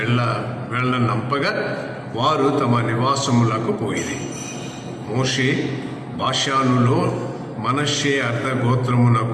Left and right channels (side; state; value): both; identical; correlation 1.00